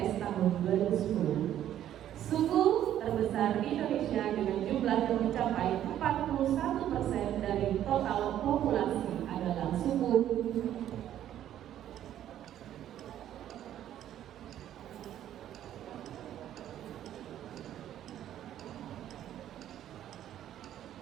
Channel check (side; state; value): left; quieter; 11.4 dB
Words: tahun 2010. Suku terbesar di Indonesia dengan jumlah yang mencapai 41% dari total populasi adalah suku